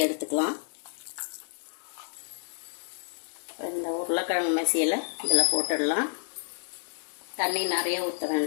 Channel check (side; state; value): right; silent; 58 dB below the other